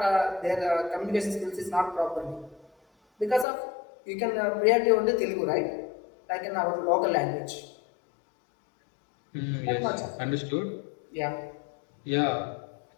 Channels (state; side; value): drops out; right; at 3.5 s